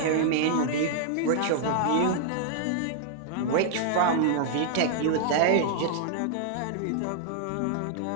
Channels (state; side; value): different; both; correlation -0.01